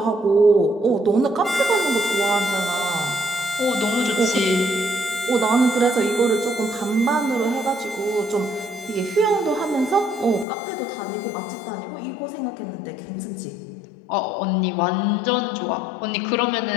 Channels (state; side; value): drops out; right; at 10.5 s